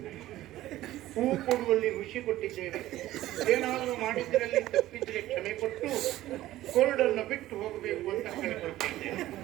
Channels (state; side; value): quieter; left; 15.1 dB